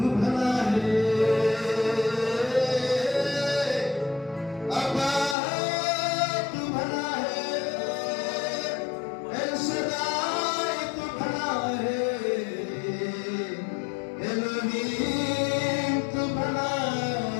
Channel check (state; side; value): drops out; right; at 5.4 s